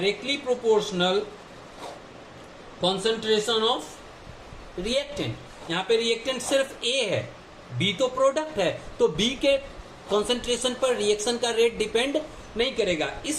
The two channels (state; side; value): identical; both; correlation 1.00